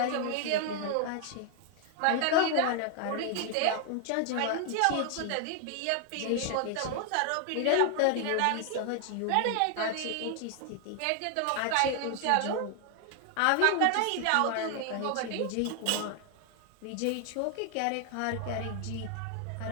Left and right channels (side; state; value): both; different; correlation 0.00